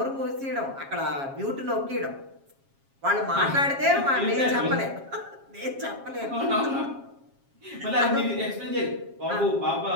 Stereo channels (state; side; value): late; left; 7.3 ms